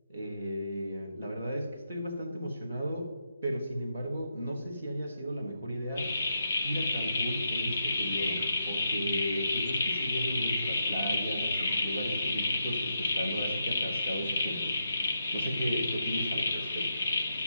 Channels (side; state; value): both; inverted; correlation -0.82